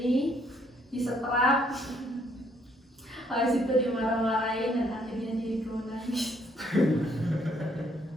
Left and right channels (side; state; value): both; normal; correlation 0.68